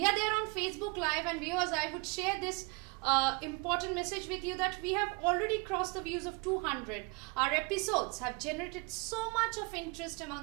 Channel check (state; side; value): quieter; left; 28.8 dB